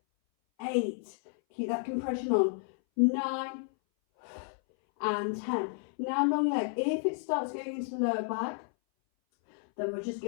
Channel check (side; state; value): right; silent; 57 dB below the other